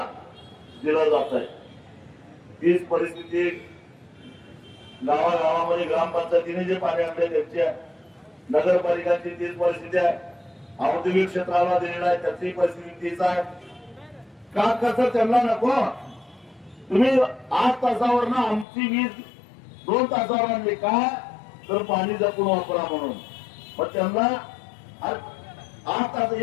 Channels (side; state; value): right; drops out; at 18.7 s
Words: दिलं जात आहे. तीच परिस्थिती गावागावामध्ये ग्रामपंचायतीने जे पाणी आणले त्यांची आहे, नगरपालिकांची तीच परिस्थिती आहे, औद्योगिक क्षेत्राला दिलेला आहे त्याची परिस्थिती तीच आहे. का कसं त्यांना नको? तुम्ही 8 तासावर ना आमची वीज 2 तासावर आणली का? तर पाणी जपून वापरा म्हणून. मग त्यांना 8 तास